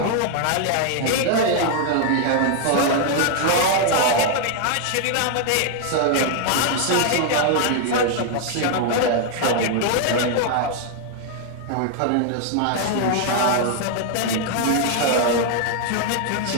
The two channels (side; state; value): both; different; correlation 0.00